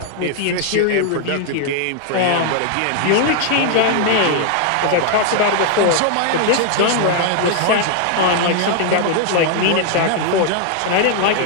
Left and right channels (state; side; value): different; both; correlation 0.00